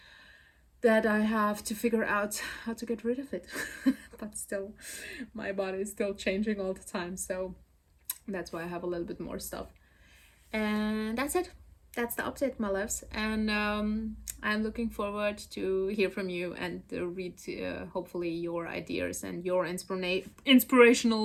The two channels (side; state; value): both; identical; correlation 1.00